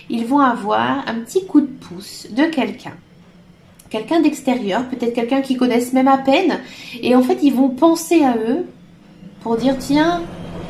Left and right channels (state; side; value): identical; both; correlation 1.00